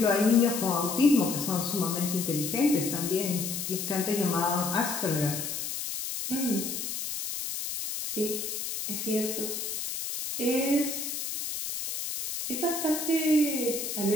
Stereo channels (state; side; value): noise; left; hiss, 4 dB below the sound